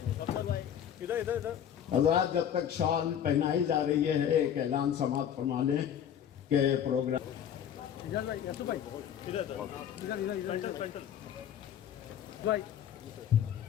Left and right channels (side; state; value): right; quieter; 9.4 dB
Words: حضرات جب تک شال پہنائی جا رہی ہے ایک اعلان سماعت فرما لیں کہ پروگرام